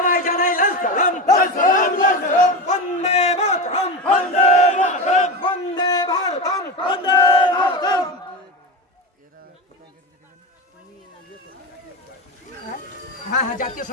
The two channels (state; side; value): normal; both; correlation 0.20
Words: জানাই লাল সালাম। বন্দে মাতরম, বন্দে মাতরম, বন্দে ভারতম, বন্দে ভারতম। হ্যাঁ, জাতীয়